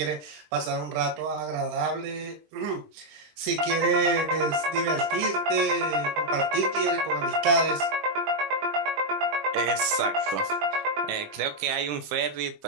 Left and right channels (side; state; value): left; late; 20 ms